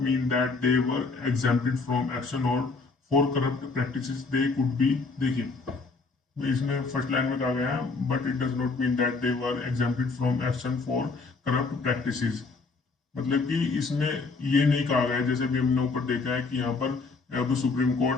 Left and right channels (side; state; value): right; quieter; 4.1 dB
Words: mean that they were exempted from action और for corrupt practices they could be. देखिए इसमें फर्स्ट लाइन में कहा गया है but it does not mean that they were exempted from action for corrupt practices. मतलब कि इसमें ये नहीं कहा गया जैसे भी हमने ऊपर देखा है कि यहाँ पर अब सुप्रीम